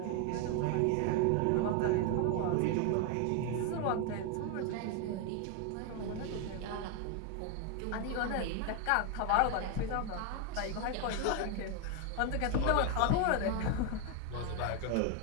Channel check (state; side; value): different; both; correlation 0.01